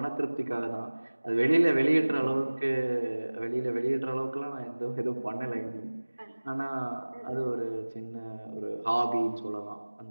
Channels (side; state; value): both; inverted; correlation -1.00